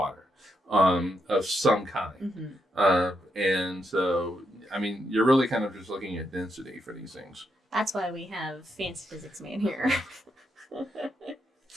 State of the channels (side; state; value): both; normal; correlation 0.81